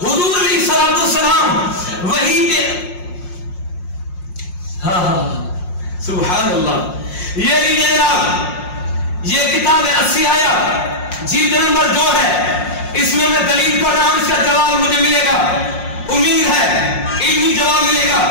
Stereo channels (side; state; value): right; late; 5.6 ms